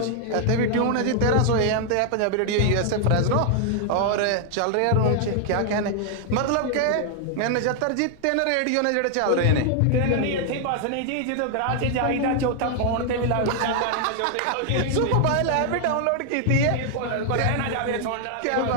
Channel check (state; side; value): different; both; correlation 0.00